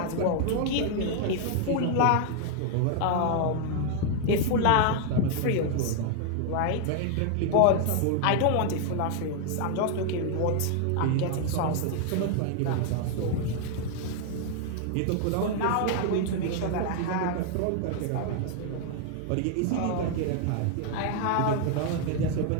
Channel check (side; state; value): both; different; correlation 0.00